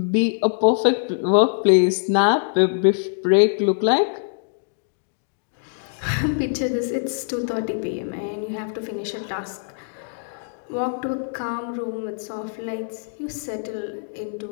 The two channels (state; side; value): silent; right; digital silence